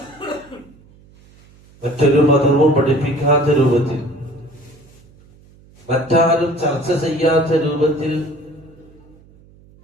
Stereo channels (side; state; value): right; noise; hum, 27 dB below the sound